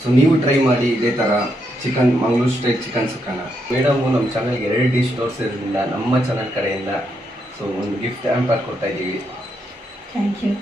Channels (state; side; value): normal; both; correlation 0.79